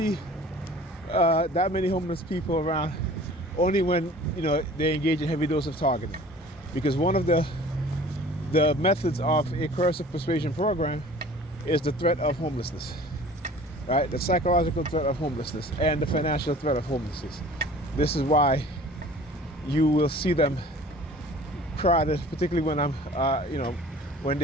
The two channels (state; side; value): normal; both; correlation 0.47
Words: that many homeless people around, only when, you know, they engage in heavy dose of targeting. Because one of the methods of a coercive persuasion program is the threat of homelessness, right? The psychological threat of homelessness and the financial threat of homelessness. This is why you will see them crowded, particularly when I'm, you know, when